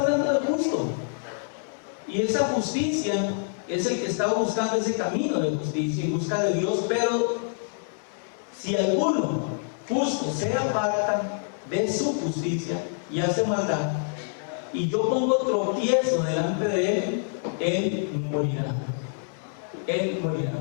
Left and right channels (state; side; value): silent; right; digital silence